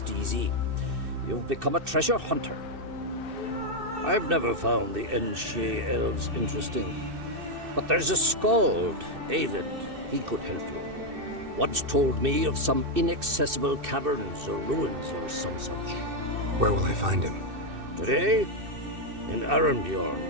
easy. You've become a treasure hunter. I've never found the Enshe elves interesting. But there's a skald, Eyvind. He could help you. Once told me of some inaccessible caverns or ruins or some such. Where will I find him? Today? In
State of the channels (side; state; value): left; late; 2.6 ms